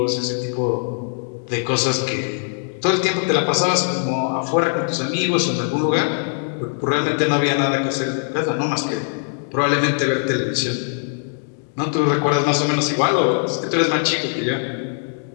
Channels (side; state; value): right; silent; 65 dB below the other